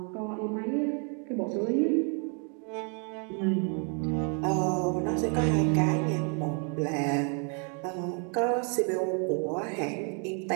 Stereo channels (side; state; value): left; quieter; 39.0 dB